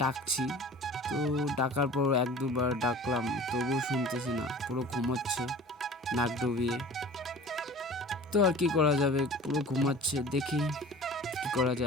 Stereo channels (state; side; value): normal; both; correlation 0.41